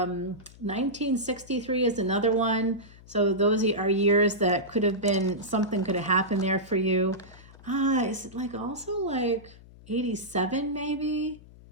is another one. So those are years that could have been, something could have happened there for you. Is it like also like 87 maybe?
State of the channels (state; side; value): noise; left; hum, 21 dB below the sound